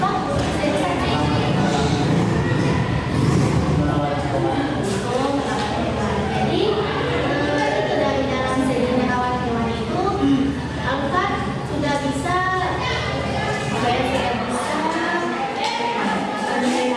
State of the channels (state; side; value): identical; both; correlation 1.00